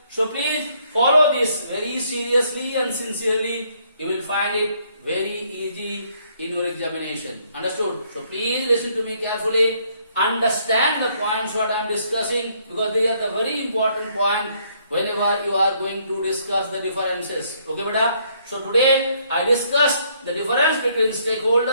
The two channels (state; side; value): inverted; both; correlation -0.68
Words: So please follow this very seriously and sincerely. You will find it very easy in your examination. Understood? So please listen to me carefully. Understand the points what I am discussing, because they are the very important point whenever you are going to discuss the differences. Okay, beta? So today I discussed the difference between